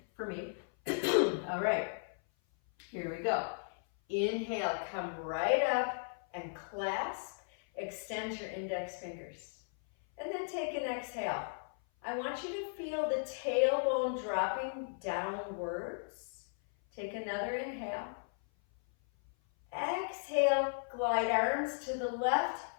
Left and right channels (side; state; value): right; silent; 54 dB below the other